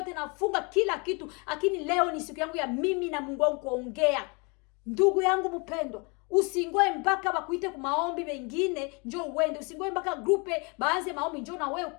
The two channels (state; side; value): quieter; right; 31.1 dB